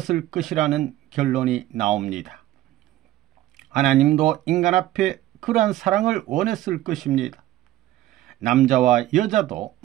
것이라는 결론이 나옵니다. 하나님도 인간 앞에 그러한 사랑을 원했을 것입니다. 남자와 여자도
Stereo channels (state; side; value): quieter; left; 14.8 dB